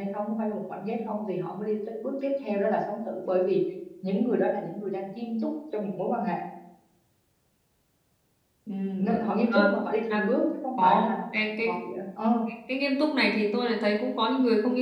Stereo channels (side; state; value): both; identical; correlation 1.00